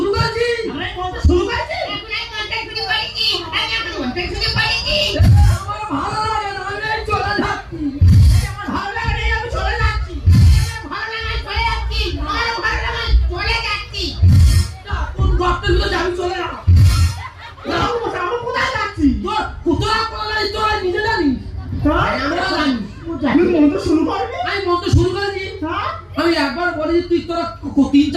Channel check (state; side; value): identical; both; correlation 1.00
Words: করেছি আমরা এই মন্ত্র শুরু করেছি। এখন এই মনটা শুরু করেছি। আমি মন্ত্র শুরু করবি? আমি মন্ত্র শুরু করেছি। হ্যাঁ? আমি একবার বলেছি, তুই তোরা